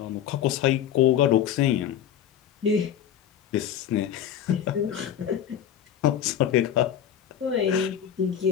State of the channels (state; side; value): quieter; right; 9.7 dB